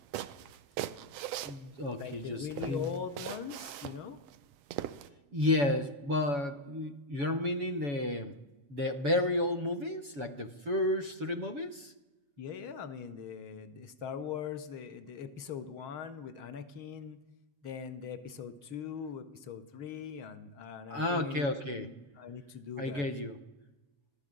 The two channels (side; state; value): left; late; 7.1 ms